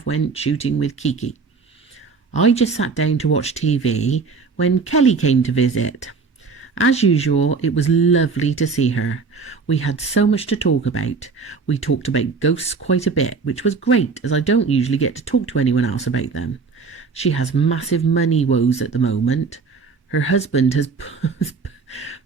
went shooting with Kiki. I just sat down to watch TV when Kelly came to visit. As usual, it was lovely to see her. We had so much to talk about. We talked about ghosts quite a bit, which was great as I don't usually get to talk to anyone else about them. She has massive money woes at the moment. Her husband has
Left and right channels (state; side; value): quieter; left; 4.8 dB